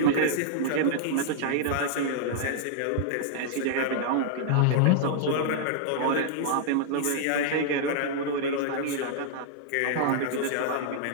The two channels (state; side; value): different; both; correlation -0.01